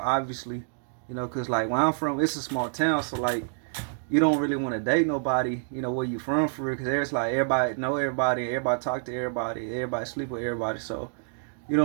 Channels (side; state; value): left; silent; digital silence